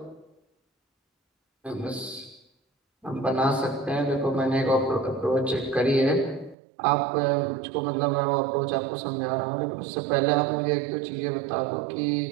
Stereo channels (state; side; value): drops out; left; at 6.6 s